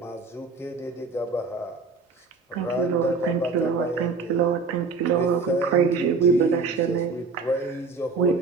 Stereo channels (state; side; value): quieter; left; 4.4 dB